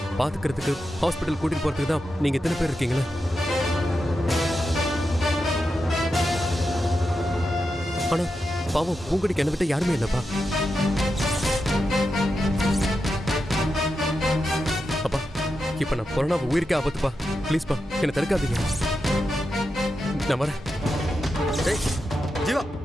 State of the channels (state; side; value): normal; both; correlation 0.88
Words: பாத்துக்கிறதுக்கு ஹாஸ்பிட்டல் கூட்டிட்டு போறதுக்கு தான் நீங்க எத்தனை பேர் இருக்கீங்களா? ஆனா பாவம், பூங்குடிக்கு என்ன விட்ட யாருமே இல்லப்பா. அப்பா, இப்ப நான் கொரோனா உயிருக்கே ஆபத்துப்பா. ப்ளீஸ்ப்பா, என்னை தடுக்காதீங்க. நான் வரேன். டேய் ஜீவா,